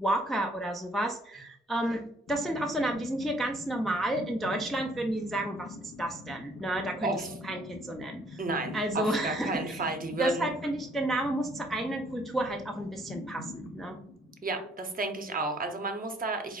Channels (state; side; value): normal; both; correlation 0.63